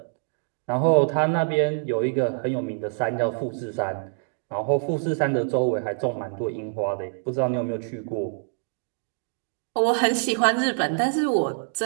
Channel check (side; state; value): left; silent; digital silence